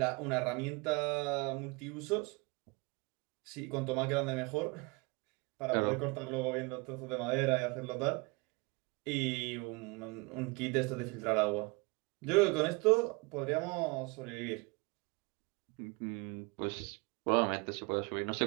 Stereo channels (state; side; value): quieter; left; 28.0 dB